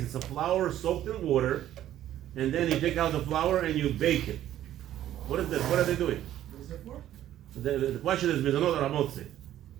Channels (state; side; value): quieter; left; 12.3 dB